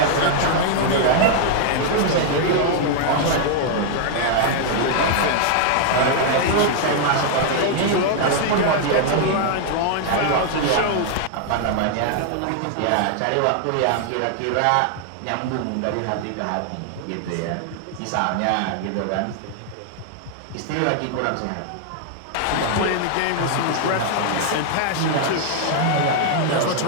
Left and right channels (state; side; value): different; both; correlation 0.00